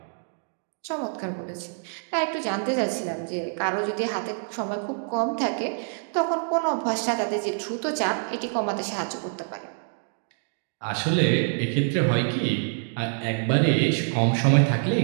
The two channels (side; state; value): left; silent; digital silence